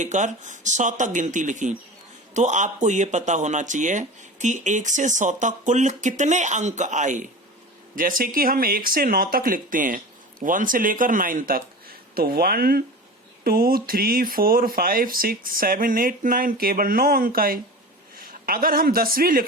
100 तक गिनती लिखी, तो आपको यह पता होना चाहिए कि 1 से 100 तक कुल कितने अंक आए। जैसे कि हम 1 से 9 तक लिखते हैं, 1 से लेकर 9 तक, तो 1 2 3 4 5 6 7 8 9 केवल 9 अंक आए। अगर हम 10वीं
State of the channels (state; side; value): normal; both; correlation 0.33